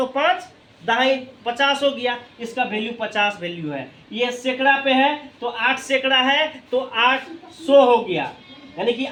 5 दहाई 50 हो गया। इसका वैल्यू 50 वैल्यू है। ये सैकड़ा पे है तो 8 सैकड़ा है तो 800 हो गया। यानी कि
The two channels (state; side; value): identical; both; correlation 1.00